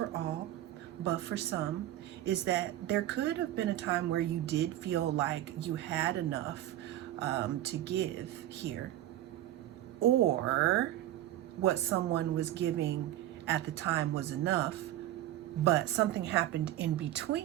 all, but for some, is that there could have been a time where you did feel like you had enough to give here, or what someone was giving at the time was enough, but something happened in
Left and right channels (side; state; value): left; quieter; 13.6 dB